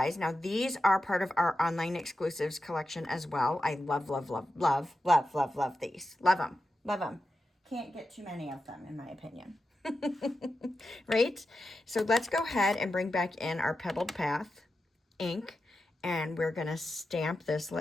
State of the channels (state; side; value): normal; both; correlation 0.90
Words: Now these are part of our online exclusives collection as well. I love, love, love, love, love, love, love these. Love them, love them. Can't get too many of them, in my opinion. Right? So let's go ahead and bring back in our Pebbled Path ink, and we're going to stamp this.